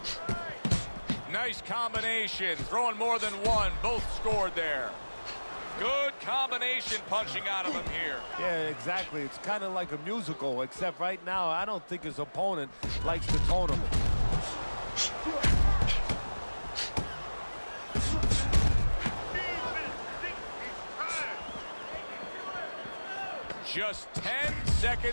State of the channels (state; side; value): inverted; both; correlation -1.00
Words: Nice combination, throwing more than one. Both scored there. Good combination punching out of him here. Yeah, exactly. It's kind of like a musical, except right now I don't think his opponent likes to tone him. Just 10